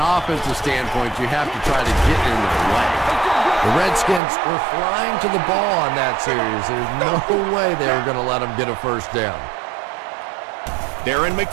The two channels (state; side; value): drops out; left; at 4.2 s